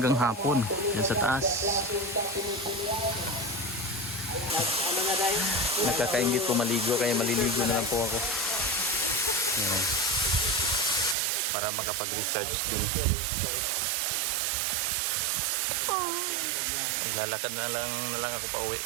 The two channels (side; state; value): left; drops out; at 11.2 s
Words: hapon, yan sa taas. Nakakaingit po maligo, kaya maliligo na lang po ako. Yan. Para makapag-recharge din. Lalakad na lang ako pa uwi